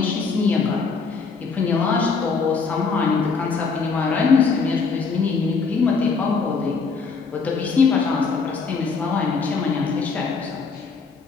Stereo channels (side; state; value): right; quieter; 4.8 dB